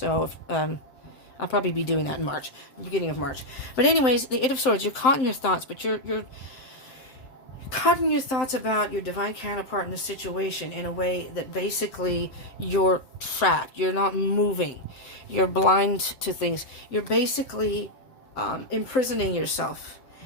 if, I'll probably be doing that in March, beginning of March. But anyways, the Eight of Swords, you're caught in your thoughts, but you're caught in your thoughts about your divine counterpart in the situation in a way that basically you're trapped. You're not moving. You're blind to things. You're basically imprisoning yourself.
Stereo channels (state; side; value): late; right; 7.7 ms